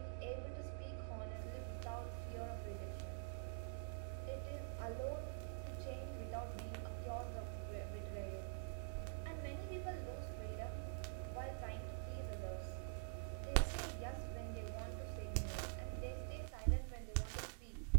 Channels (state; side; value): silent; left; digital silence